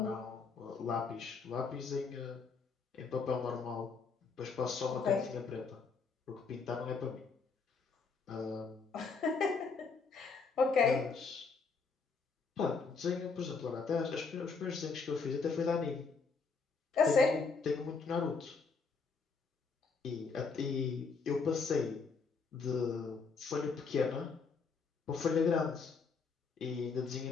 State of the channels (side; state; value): right; quieter; 4.9 dB